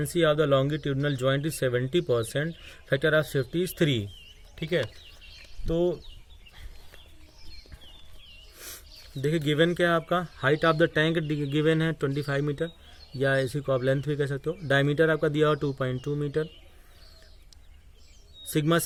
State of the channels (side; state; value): both; identical; correlation 1.00